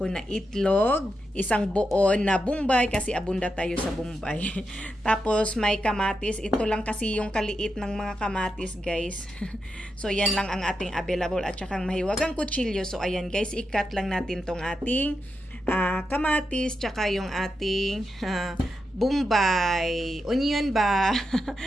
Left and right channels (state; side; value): normal; both; correlation 0.86